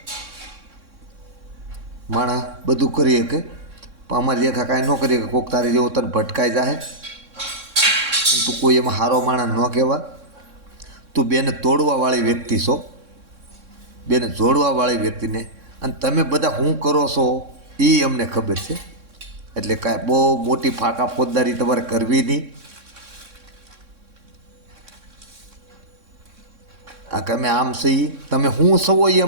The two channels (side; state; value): left; late; 3.6 ms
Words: માણા બધું કરી શકે પણ અમારી રેખા કાંઈ ન કરી શકે. કોઈક તારી જેવો તને ભટકાઈ જાય, તું કોઈ એમાં હારો માણા ન કહેવા. તું બેને તોડવાવાળી વ્યક્તિ છો, બેને જોડવાવાળી વ્યક્તિને. અને તમે બધા શું કરો છો એ અમને ખબર છે, એટલે કાંઈ બહુ મોટી ફાંકા ફોજદારી તમારે કરવી નહીં. આ કે અમે આમ છીએ, તમે શું છો એ